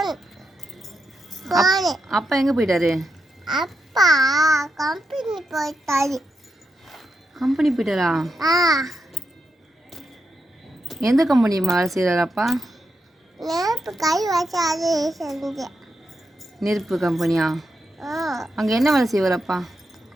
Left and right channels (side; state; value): both; normal; correlation 0.85